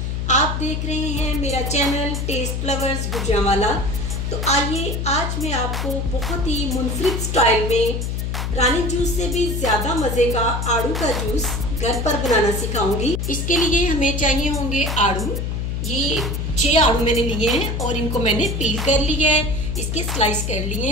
आप देख रहे हैं मेरा चैनल टेस्ट फ्लावर्स गुजरांवाला। तो आइए आज मैं आपको बहुत ही मुनफरिद स्टाइल में रानी जूस से भी ज़्यादा मज़े का आड़ू का जूस घर पर बनाना सिखाऊंगी। इसके लिए हमें चाहिए होंगे आड़ू। ये 6 आड़ू मैंने लिए हैं और इनको मैंने पील कर लिया है, इसके स्लाइस कर लिए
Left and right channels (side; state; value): left; noise; hum, 2 dB below the sound